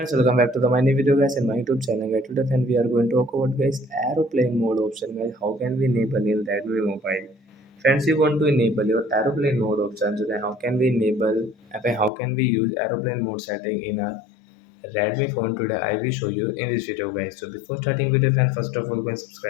welcome back to the my new video guys in my YouTube channel guys. Today friend, we are going to talk about guys aeroplane mode option guys. How can we enable in Redmi mobile? Friends, you want to enable your aeroplane mode option. So then how can we enable how can we use aeroplane mode setting in our Redmi phone today? I will show you in this video guys. So before starting video friend, first of all go and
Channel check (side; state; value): right; drops out; at 12.1 s